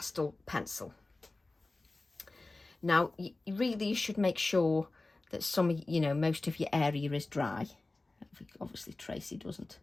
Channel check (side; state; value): right; quieter; 3.1 dB